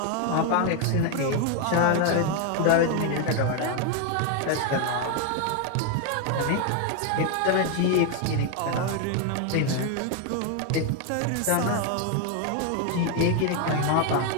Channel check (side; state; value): both; different; correlation 0.01